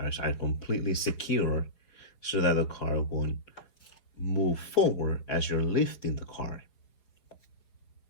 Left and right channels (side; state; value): right; late; 4.8 ms